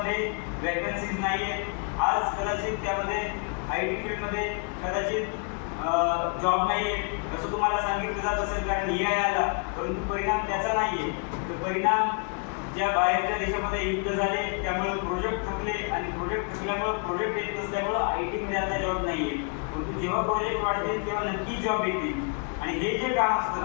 वॅकन्सीज नाही आहेत. आज कदाचित त्यामध्ये IT फील्डमध्ये कदाचित जॉब नाही आहे असं तुम्हाला सांगितलं जात असेल, कारण AI आला. परंतु परिणाम त्याचा नाही आहे. तर परिणाम ज्या बाहेरच्या देशामध्ये युद्ध झाले त्यामुळे प्रोजेक्ट थकले आणि प्रोजेक्ट थकल्यामुळे प्रोजेक्ट येत नसल्यामुळं IT मध्ये आता जॉब नाही आहे. परंतु जेव्हा प्रोजेक्ट वाढतील तेव्हा नक्की जॉब येतील. आणि हे जे काम असतं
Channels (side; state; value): right; quieter; 39.4 dB